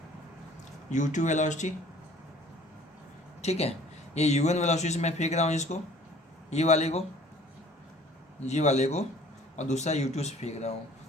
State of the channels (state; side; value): normal; both; correlation 0.52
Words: u2 वेलोसिटी। ठीक है, ये u1 वेलोसिटी से मैं फेंक रहा हूँ इसको, ये वाले को, और दूसरा u2 से फेंक रहा हूँ,